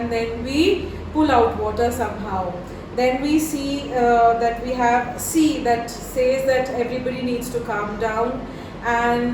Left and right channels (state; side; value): identical; both; correlation 1.00